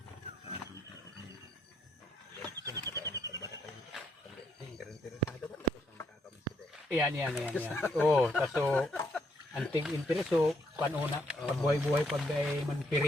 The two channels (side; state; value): both; normal; correlation 0.74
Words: Yan. Oo, kaso anting interest so panuna pagbuhay-buhay pag ay